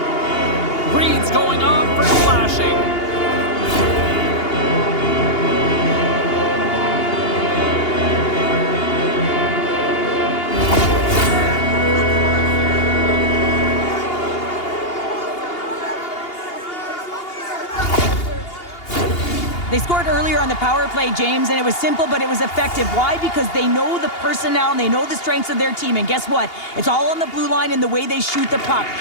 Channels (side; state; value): right; late; 2.8 ms